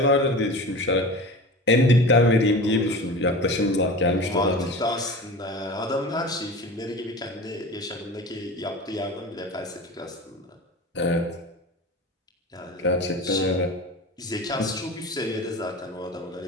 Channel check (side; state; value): both; normal; correlation 0.33